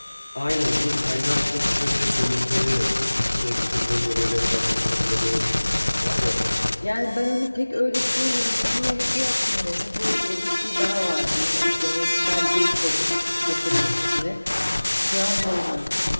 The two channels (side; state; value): both; inverted; correlation -1.00